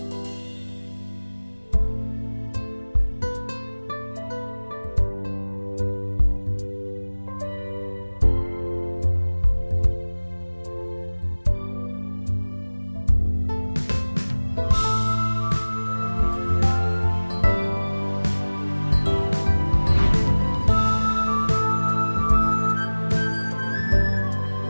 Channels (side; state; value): both; inverted; correlation -1.00